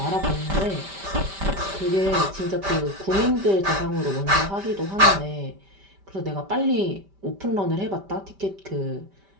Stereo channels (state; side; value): late; left; 5.1 ms